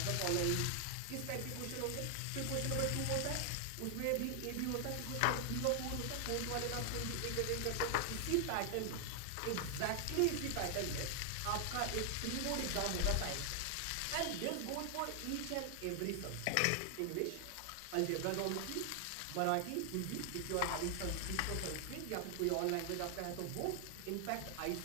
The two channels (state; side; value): different; both; correlation 0.00